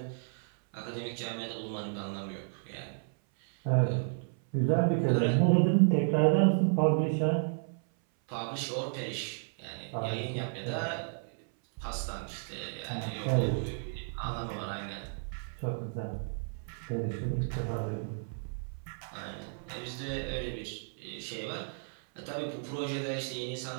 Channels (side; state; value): left; silent; 56 dB below the other